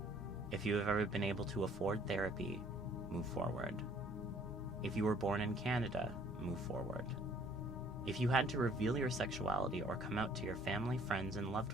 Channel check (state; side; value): normal; both; correlation 0.58